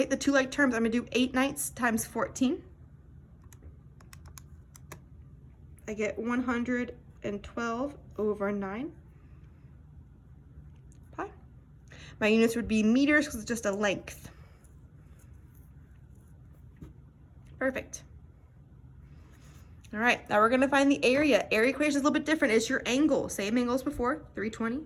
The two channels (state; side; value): identical; both; correlation 1.00